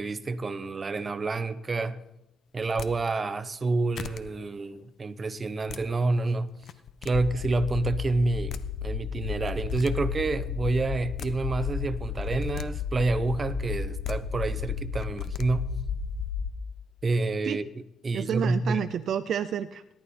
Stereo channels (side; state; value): both; normal; correlation 0.82